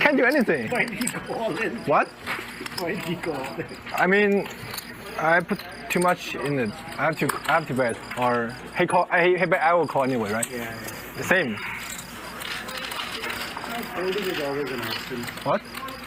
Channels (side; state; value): both; identical; correlation 1.00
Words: do anything. Why did he go all in? What? Why did he go all in? I mean, I put too much in it. I have to bet. Or he call. He bet. I will call anyway, right? Yeah. The same. Folding is always an option, What?